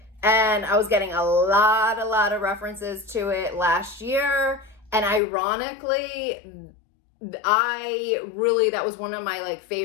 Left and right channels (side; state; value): right; drops out; at 5.2 s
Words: And I was getting a lot of references to it last year. And ironically, that was one of my like